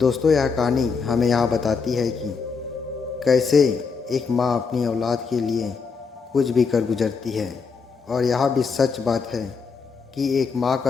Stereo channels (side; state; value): right; quieter; 5.3 dB